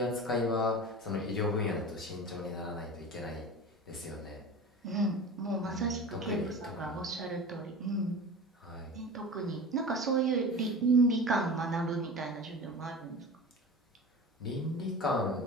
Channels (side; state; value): both; normal; correlation 0.33